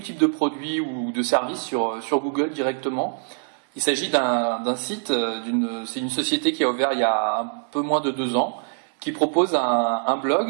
de produits ou de services sur Google directement. Il s'agit d'un site, c'est une société qui a ouvert il y a un peu moins de 2 ans, qui propose un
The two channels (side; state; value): left; silent; digital silence